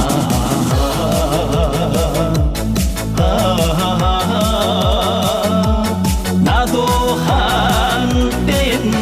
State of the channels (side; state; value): both; identical; correlation 1.00